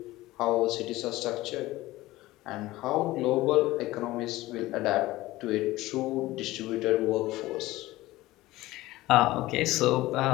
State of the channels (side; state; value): right; quieter; 17.8 dB